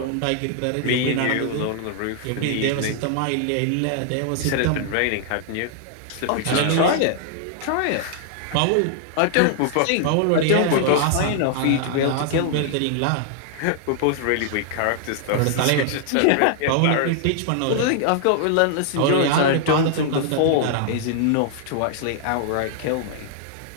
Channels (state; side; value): different; both; correlation 0.00